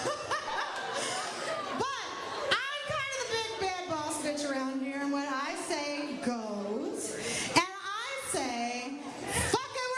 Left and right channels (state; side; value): identical; both; correlation 1.00